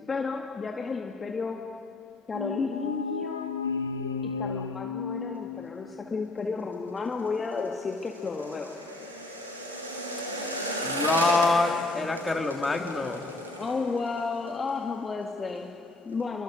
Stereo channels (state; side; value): quieter; right; 3.1 dB